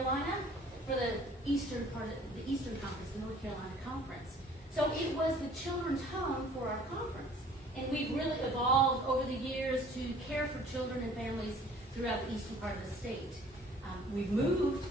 for the eastern part of the Eastern Conference, the North Carolina Conference. So it was the children's home for our conference. And we've really evolved over the years to care for children and families throughout the eastern part of the state. We've moved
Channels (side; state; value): both; normal; correlation 0.53